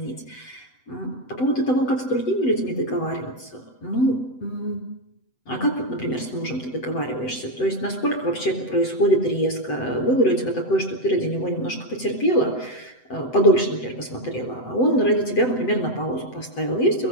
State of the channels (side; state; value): right; late; 7.9 ms